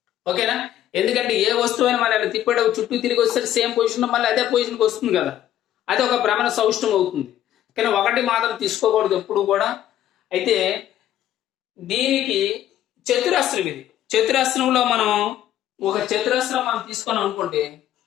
ఓకేనా? ఎందుకంటే ఏ వస్తువు అయినా మనం తిప్పేటప్పుడు చుట్టూ తిరిగి వస్తే సేమ్ పొజిషన్ మళ్ళీ అదే పొజిషన్కి వస్తుంది కదా, అది ఒక భ్రమణ సౌష్ఠవం అవుతుంది. కానీ 1 మాత్రం తీసుకోకూడదు ఎప్పుడు కూడా. అయితే దీనికి చతురస్రం, ఇది చతురస్రంలో మనం ఒక చతురస్రం మనం తీసుకున్నాం అనుకోండి,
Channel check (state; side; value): quieter; right; 12.0 dB